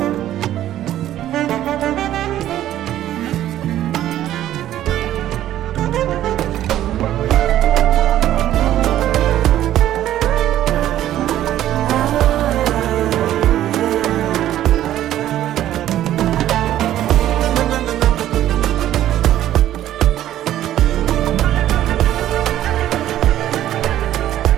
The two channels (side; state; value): left; quieter; 12.6 dB